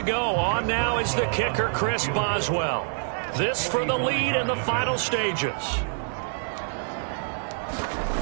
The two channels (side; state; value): left; silent; digital silence